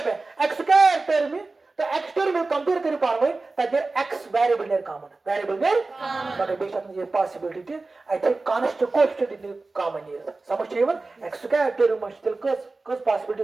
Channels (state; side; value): quieter; left; 3.5 dB